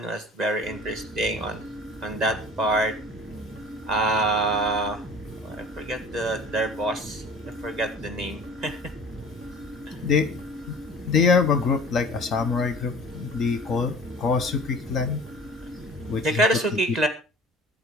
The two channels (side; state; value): both; normal; correlation 0.44